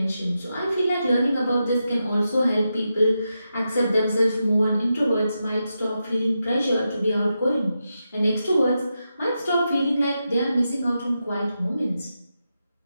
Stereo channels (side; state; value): both; inverted; correlation -0.88